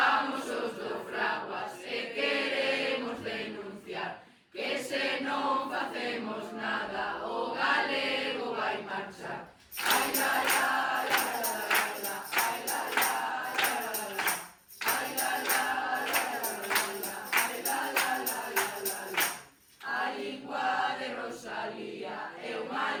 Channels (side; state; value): both; identical; correlation 1.00